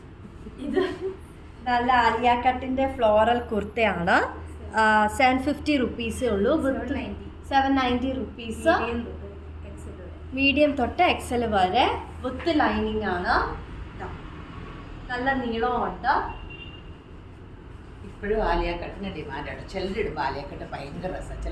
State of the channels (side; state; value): both; identical; correlation 1.00